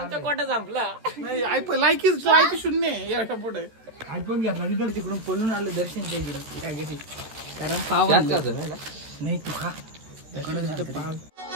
कोटा संपला. नाही लायकी 0 याच्या पुढे आयफोन घेतला तिकडे तिकडून पळून आलं दर्शनच्या इकडे त्या घरी. कारण पाव नाही तू खा. पाव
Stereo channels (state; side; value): late; left; 13 ms